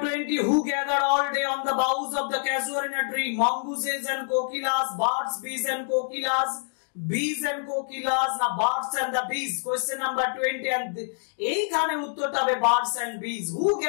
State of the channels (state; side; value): silent; right; 61 dB below the other